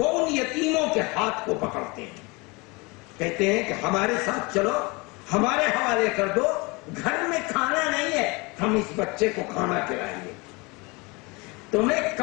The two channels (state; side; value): quieter; right; 26.7 dB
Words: ان یتیموں کے ہاتھ کو پکڑتے ہیں، کہتے ہیں کہ ہمارے ساتھ چلو، ہمارے حوالے کر دو، گھر میں کھانا نہیں ہے، ہم اس بچے کو کھانا کھلائیں گے، تمہیں